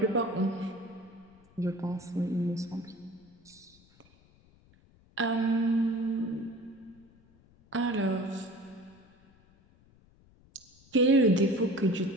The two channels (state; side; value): noise; left; rumble, 29 dB below the sound